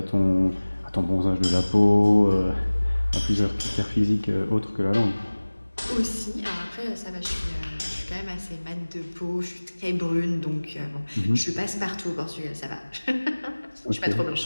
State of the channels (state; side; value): inverted; both; correlation -1.00